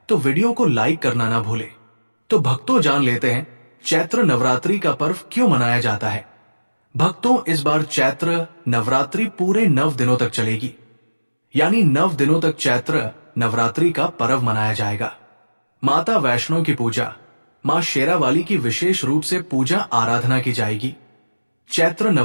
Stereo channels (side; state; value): both; inverted; correlation -1.00